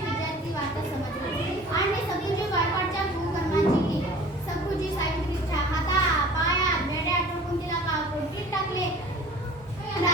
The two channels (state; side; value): normal; both; correlation 0.46